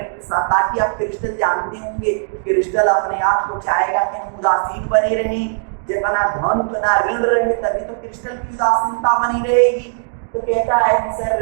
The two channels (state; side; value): silent; left; digital silence